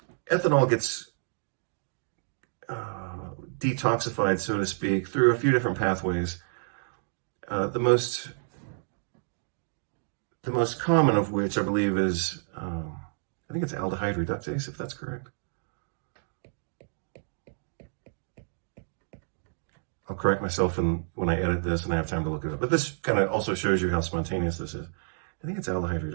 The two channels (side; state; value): left; silent; digital silence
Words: Ethanol gets detoxified, so to speak, through a few different pathways. The most common of which I believe is, I think it's aldehyde reductase, if that's correct. I'll correct myself when I edit this and I have time to look it up. But this kind of also shows you how spontaneous this is. I think it's aldehyde